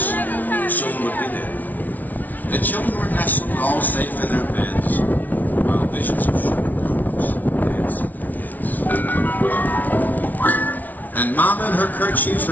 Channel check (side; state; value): right; late; 0.079 ms